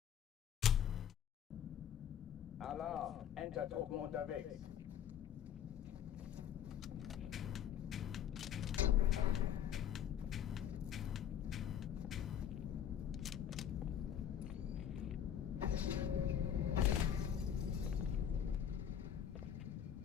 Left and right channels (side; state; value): right; quieter; 9.4 dB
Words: Alarm! Entertruppen unterwegs.